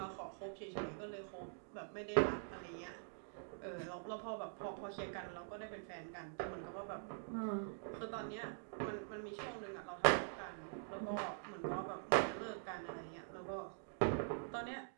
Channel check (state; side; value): silent; left; digital silence